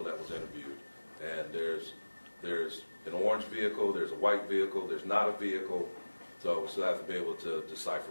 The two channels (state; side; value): inverted; both; correlation -1.00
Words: that was interviewed. And there's an orange vehicle, there's a white vehicle, there's not a vehicle. So we still have to be able to